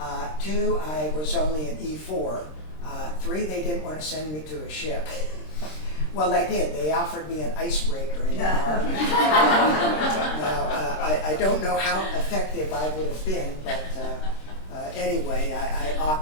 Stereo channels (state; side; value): late; right; 26 ms